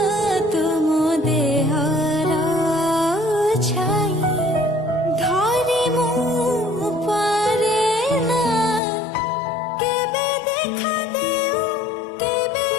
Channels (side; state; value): right; drops out; at 8.8 s